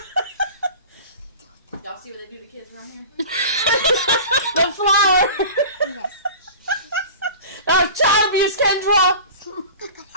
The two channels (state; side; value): inverted; both; correlation -0.37